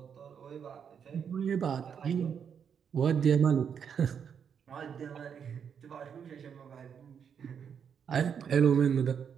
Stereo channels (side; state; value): left; quieter; 7.5 dB